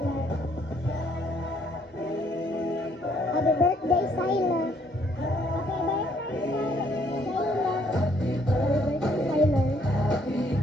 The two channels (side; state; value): both; normal; correlation 0.67